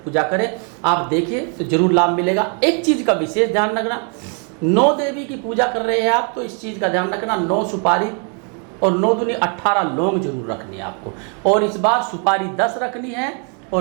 करें। आप देखिए तो जरूर लाभ मिलेगा। एक चीज़ का विशेष ध्यान रखना, 9 देवी की पूजा कर रहे हैं आप तो इस चीज़ का ध्यान रखना, 9 सुपारी और 9 दूनी 18 लौंग जरूर रखनी है आपको। और इस बार सुपारी 10 रखनी है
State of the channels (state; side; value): quieter; left; 38.9 dB